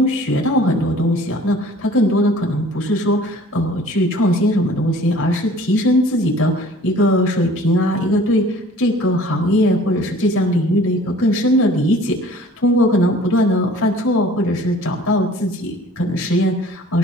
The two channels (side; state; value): both; normal; correlation 0.49